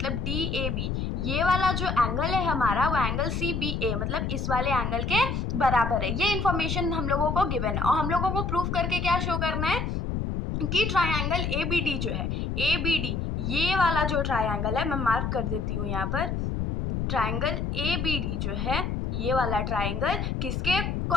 DAB ये वाला जो एंगल है हमारा वो एंगल CBA मतलब इस वाले एंगल के बराबर है। ये इन्फॉर्मेशन हम लोगों को गिवन है और हम लोगों को प्रूफ करके क्या शो करना है कि ट्राइंगल ABD जो है, ABD ये वाला जो ट्राइंगल है, मैं मार्क कर देती हूँ यहाँ पर, ट्राइंगल ABD जो है ये वाला ट्राइंगल किसके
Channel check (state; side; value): noise; left; rumble, 1 dB below the sound